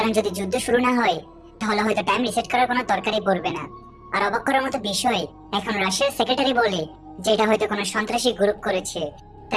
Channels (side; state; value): both; identical; correlation 1.00